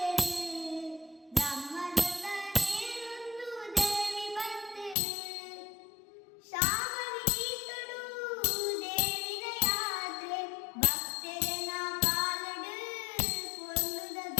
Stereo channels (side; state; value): right; drops out; at 5.0 s